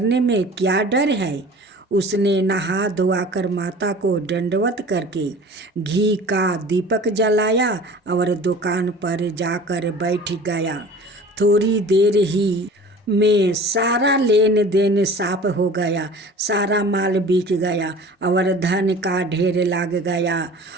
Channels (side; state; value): both; normal; correlation 0.42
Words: में क्या डर है? उसने नहा धोआकर माता को दंडवत करके घी का दीपक जलाया और दुकान पर जाकर बैठ गया। थोड़ी देर ही में सारा लेन देन साफ हो गया, सारा माल बिक गया और धन का ढेर लग गया।